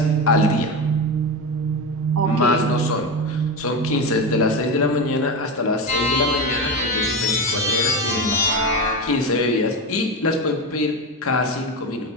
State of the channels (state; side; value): normal; both; correlation 0.19